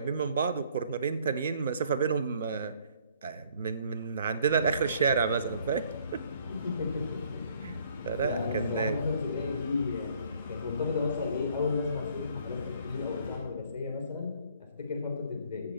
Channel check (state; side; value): inverted; both; correlation -0.61